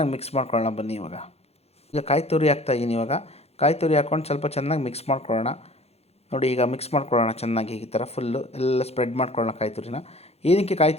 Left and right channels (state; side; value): late; right; 0.30 ms